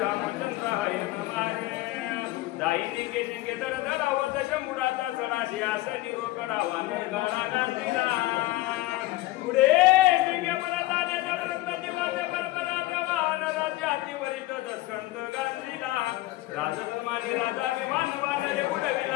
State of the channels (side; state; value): right; quieter; 18.0 dB